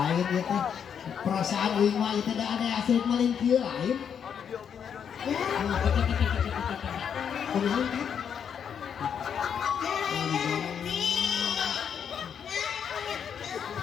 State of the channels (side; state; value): right; quieter; 7.8 dB